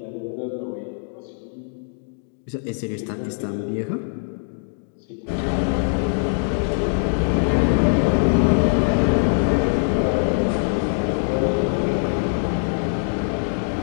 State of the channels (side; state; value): right; silent; digital silence